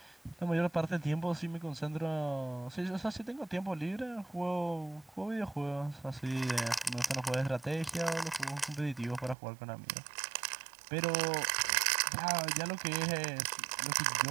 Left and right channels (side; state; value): left; drops out; at 9.3 s